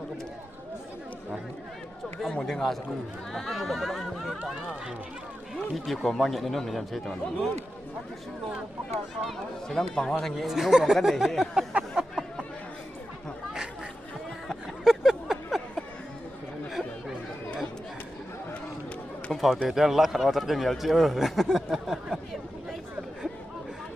ông muốn đi ngã sao đi kiểu của mang nhận đến nó mình làm gì tưởng sẽ đang bằng hoa thành nghệ không còn cái này không phao tê tiền lắc khẩn thật cái nhiều chứ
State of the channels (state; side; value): normal; both; correlation 0.91